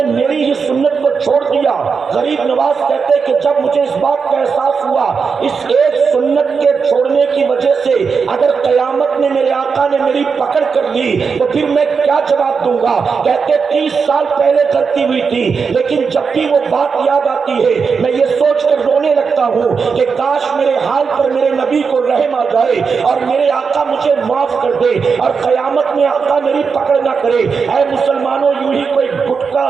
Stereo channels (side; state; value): left; quieter; 5.5 dB